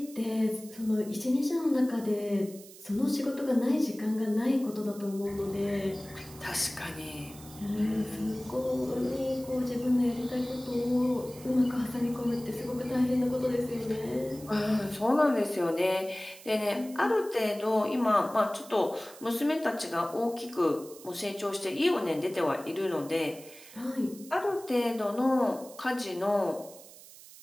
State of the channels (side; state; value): right; noise; hiss, 19 dB below the sound